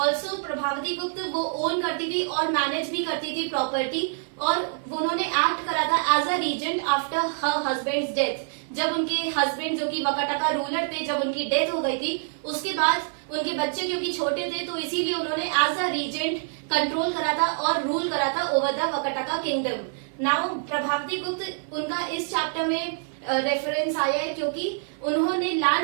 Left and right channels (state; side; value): silent; left; digital silence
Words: Prabhavati गुप्त वो ओन करती थी और मैनेज भी करती थी प्रॉपर्टी, और उन्होंने एक्ट करा था as a regent after her husband's death. जब उनके हस्बैंड जो कि वकाटका रूलर थे, जब उनकी डेथ हो गई थी, उसके बाद उनके बच्चे क्योंकि छोटे थे, तो इसीलिए उन्होंने एज अ रीजेंट कंट्रोल करा था और रूल करा था over the Vakataka kingdom. Now Prabhavati गुप्त, उनका इस चैप्टर में रेफरेंस आया है क्योंकि उन्होंने